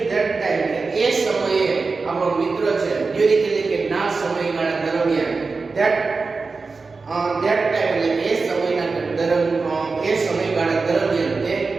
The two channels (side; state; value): left; quieter; 4.2 dB